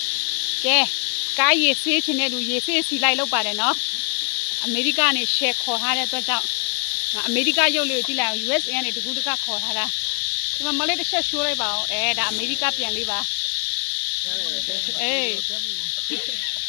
ကဲကားရည်ဆေးချင်တဲ့လူရည်ဆေးစီလိုက်လောက်ပါတယ်နော်အမေရိကနေရှယ်ခေါ်ထားတဲ့အတွက်ကြောင့်အမေရိကရုပ်လေးကိုကြည့်လိုက်အောင် USA ကနေတကူတကခေါ်ထားတာဒီမှာမလေးတစ်ချက်ရှိုးလိုက်ပါအောင်ဒါအမေရိကပြန်လေးပါအေး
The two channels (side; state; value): right; quieter; 37.5 dB